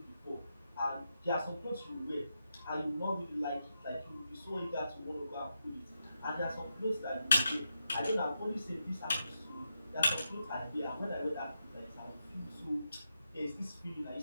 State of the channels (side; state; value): both; inverted; correlation -0.86